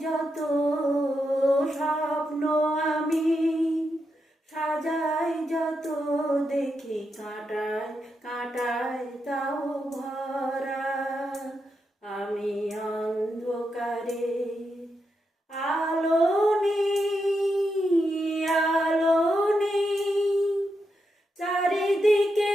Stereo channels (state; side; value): normal; both; correlation 0.84